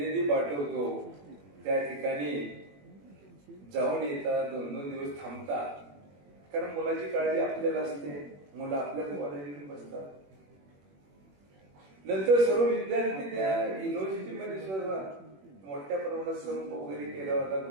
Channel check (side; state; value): left; late; 21 ms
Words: पाठवतो, त्या ठिकाणी जाऊन येतात, 2-2 दिवस थांबतात, कारण मुलाची काळजी आपल्याला असते. मुलं आपल्याच कॉलेजमध्ये बसतात. नंतर सर्व विद्यार्थी त्या युनिव्हर्सिटीमध्ये सुद्धा मोठ्या प्रमाणात संप वगैरे केला होता,